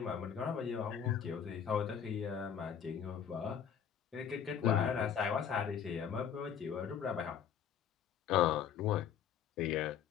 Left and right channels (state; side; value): quieter; right; 8.3 dB